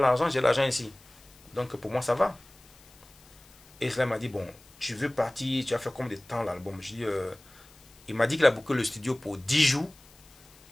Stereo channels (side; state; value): left; noise; hiss, 25 dB below the sound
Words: j'ai l'argent ici. Donc pour moi, ça va. Et cela m'a dit, bon, tu veux partir, tu as fait combien de temps l'album? Je dis, il m'a dit qu'il a booké le studio pour 10 jours,